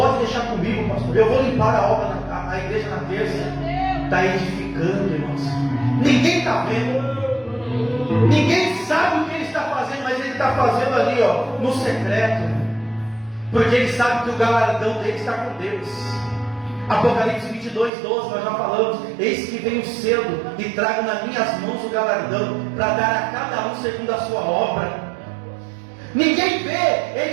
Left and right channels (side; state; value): left; drops out; at 17.9 s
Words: deixar comigo, pastor. Eu vou limpar a obra, a igreja na terça. Está edificando, irmãos. Ninguém está vendo. Ninguém sabe o que ele está fazendo, mas ele está fazendo ali, ó, no secreto. Porque ele sabe que o galardão dele está com Deus. Apocalipse 22:12, nós já falamos: eis que venho cedo e trago nas minhas mãos o galardão, para dar a cada um segundo a sua obra. Ninguém vê,